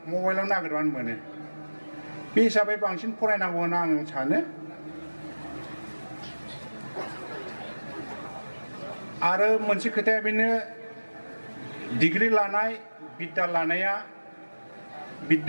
मबाइलाव नागिरबानो मोनो बे हिसाबै बांसिन फरायनांगौ होनना आं सानो आरो मोनसे खोथाया बेनो डिग्री लानाय बिद्दा लानाया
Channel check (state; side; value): inverted; both; correlation -1.00